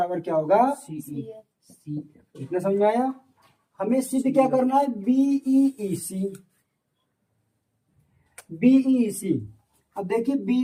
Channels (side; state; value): both; identical; correlation 1.00